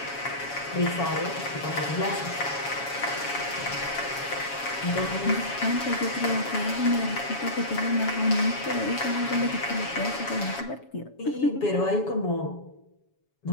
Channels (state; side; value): late; right; 7.1 ms